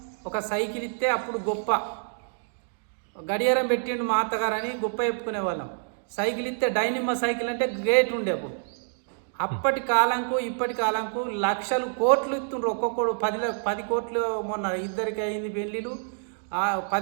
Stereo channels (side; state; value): left; silent; digital silence